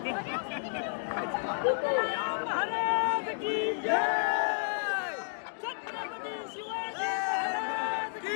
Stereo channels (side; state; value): right; silent; digital silence